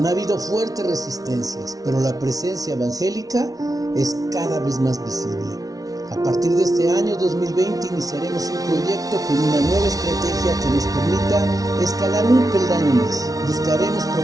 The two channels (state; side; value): late; left; 0.18 ms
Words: habido fuertes resistencias, pero la presencia evangélica es cada vez más visible. A partir de este año 2020 iniciaremos un proyecto con una nueva estrategia que nos permita escalar un peldaño más. Buscaremos